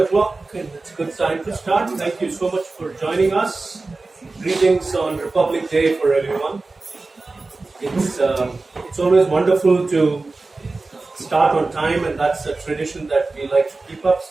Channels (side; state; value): left; quieter; 3.5 dB